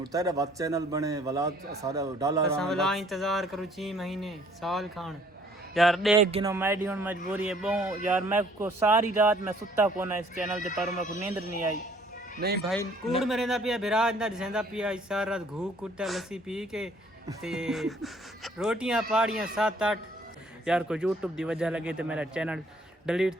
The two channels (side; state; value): both; normal; correlation 0.59